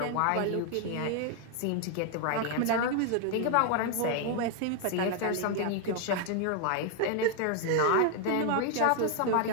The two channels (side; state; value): both; different; correlation 0.00